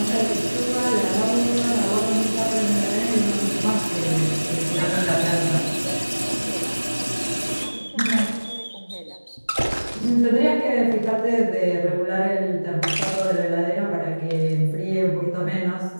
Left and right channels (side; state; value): both; inverted; correlation -1.00